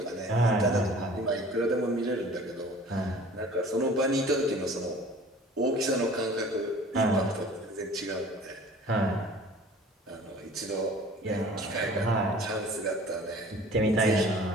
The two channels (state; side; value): normal; both; correlation 0.47